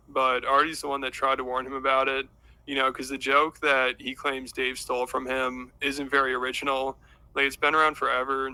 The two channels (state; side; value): identical; both; correlation 1.00